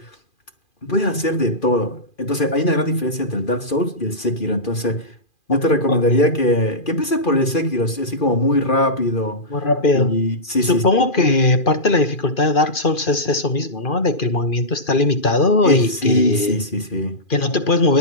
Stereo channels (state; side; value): late; right; 2.4 ms